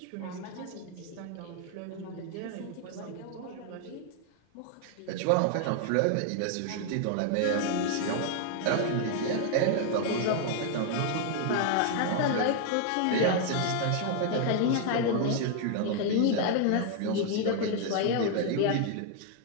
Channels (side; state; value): both; different; correlation 0.00